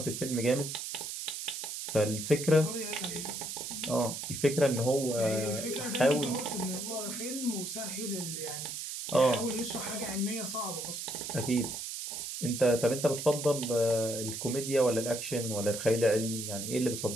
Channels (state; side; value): noise; right; hiss, 6 dB below the sound